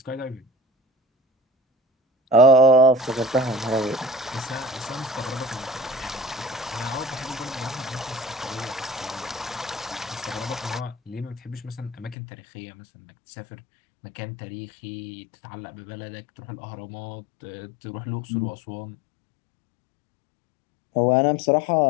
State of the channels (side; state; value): right; drops out; at 12.2 s